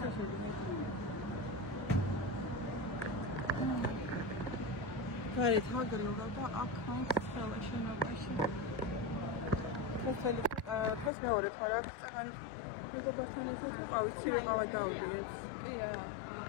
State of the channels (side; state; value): right; drops out; at 11.1 s